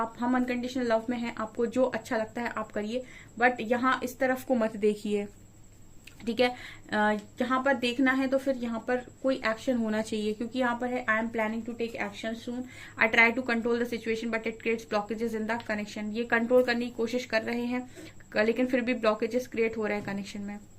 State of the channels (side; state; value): both; identical; correlation 1.00